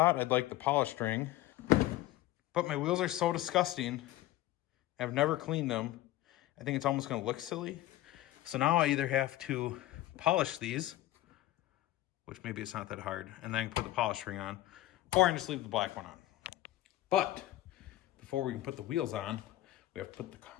I'd like the polished ring, but my wheels are so disgusting. I've never cleaned them. I think it's almost gonna look silly. So now I either have to polish these, which maybe it's not that hard, and then I can put the polished ring on, or I can just leave the black one on. But before we can put the wheels on, we have to put the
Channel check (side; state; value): right; quieter; 15.5 dB